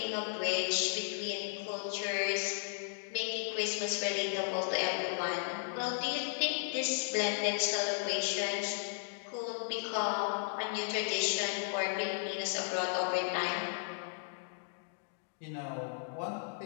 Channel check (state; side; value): silent; right; digital silence